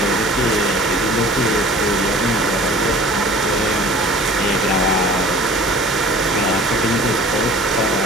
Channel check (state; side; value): normal; both; correlation 0.46